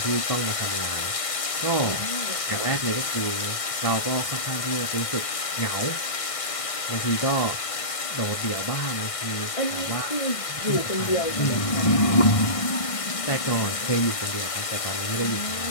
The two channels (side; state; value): right; late; 1.6 ms